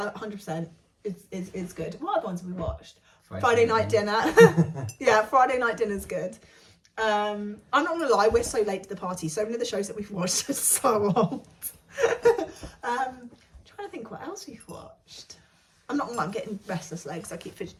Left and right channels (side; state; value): both; identical; correlation 1.00